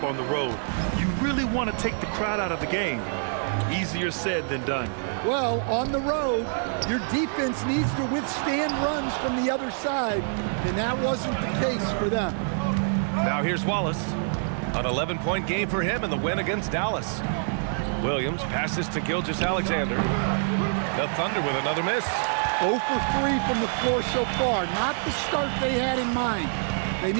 on the road. You really want to take the crowd out of the game. Easier said than done. Well, on the road, your defense needs to withstand runs from the other side, and that wasn't the case for them. Now here's Wallace. An 11-point game for him in the win against Dallas. Williams passes to Gilgeous-Alexander. The Thunder with another miss. 0 for 3 from the floor so far. Not the start they had in mind. They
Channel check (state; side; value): silent; left; 61 dB below the other